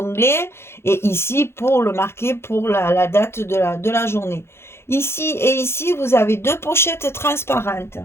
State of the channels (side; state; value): right; late; 0.12 ms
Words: et ici pour le marquer pour la date de la journée. Ici et ici, vous avez deux pochettes transparentes.